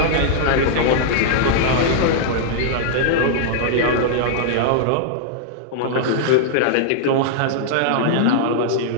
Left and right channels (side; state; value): both; different; correlation -0.01